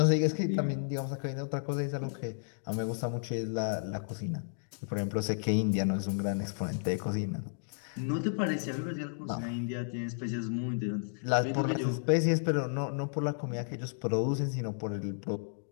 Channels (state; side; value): silent; right; digital silence